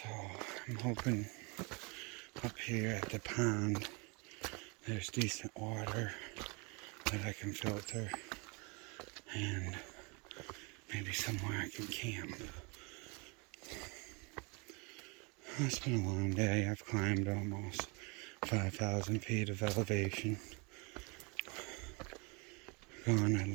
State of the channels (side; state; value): left; quieter; 30.3 dB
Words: I'm hoping up here at the pond there's decent water that I can filter and maybe somewhere I can camp. It's been a long day. I've climbed almost 5,000 feet of elevation. Gone at